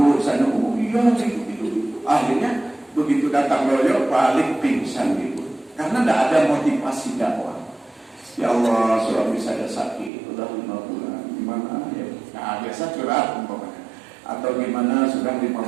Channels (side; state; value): left; drops out; at 10.1 s